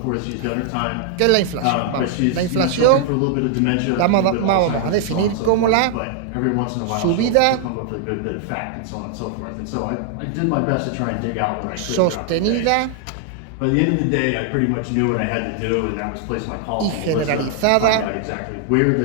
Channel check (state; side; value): different; both; correlation 0.00